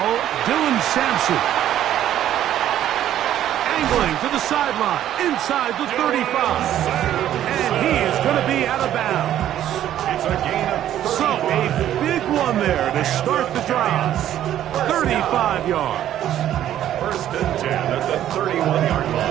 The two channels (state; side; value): quieter; left; 11.7 dB